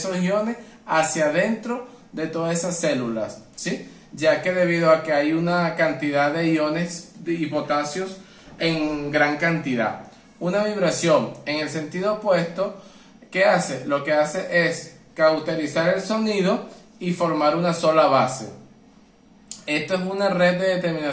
iones hacia adentro de todas esas células, ¿sí? Ya que debido a que hay una cantidad de iones y potasios en gran cantidad. Una vibración en el sentido opuesto, ¿qué hace? Lo que hace es cauterizar el sonido y formar una sola base. Esto es una red de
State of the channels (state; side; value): identical; both; correlation 1.00